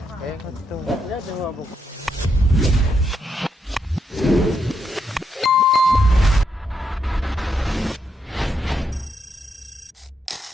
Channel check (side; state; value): both; normal; correlation 0.79